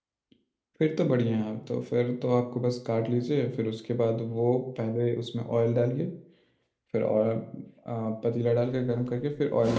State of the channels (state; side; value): identical; both; correlation 1.00